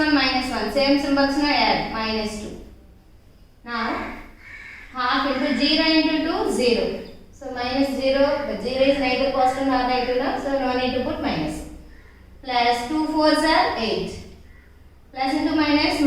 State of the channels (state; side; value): identical; both; correlation 1.00